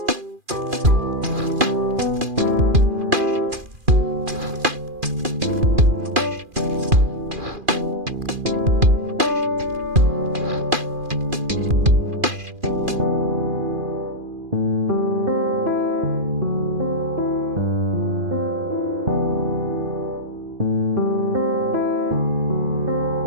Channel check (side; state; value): left; late; 2.4 ms